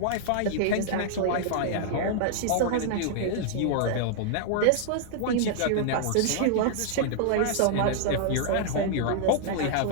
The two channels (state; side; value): different; both; correlation -0.01